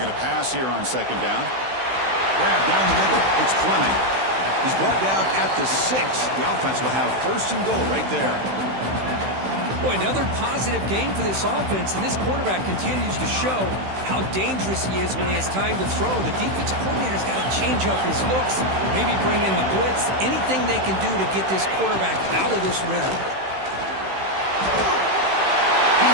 to pass here on second down. Grab down the middle. It's Fleming. He's brought down at the 6. The offense will have first and goal right there. Boy, another positive game for this offense, and this quarterback continues to show how dangerous he is when he has time to throw. The defensive coordinator's got to change up his looks, maybe bring in the blitz, anything they can do to get this quarterback out of this rhythm. He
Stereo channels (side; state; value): left; late; 16 ms